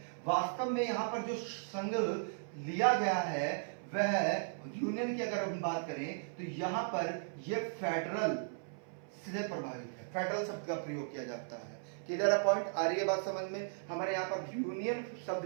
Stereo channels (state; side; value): silent; left; 53 dB below the other